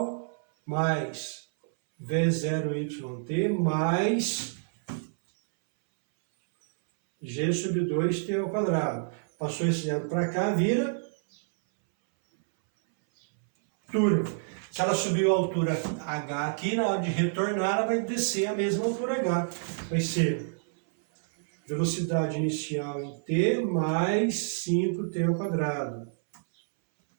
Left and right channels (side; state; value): left; silent; 59 dB below the other